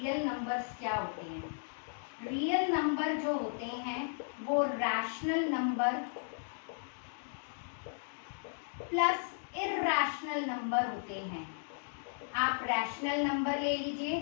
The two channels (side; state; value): right; silent; digital silence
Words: नंबर्स क्या होते हैं। रियल नंबर जो होते हैं वो rational number plus irrational number होते हैं। आप रैशनल नंबर ले